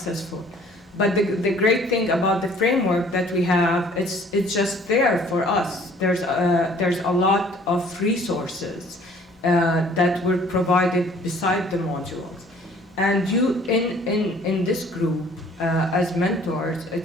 But the great thing about the framework that we have, it's just there for us. There's a lot of resources that were provided beside the modules. And you, in this group, as mentors,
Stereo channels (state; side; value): normal; both; correlation 0.55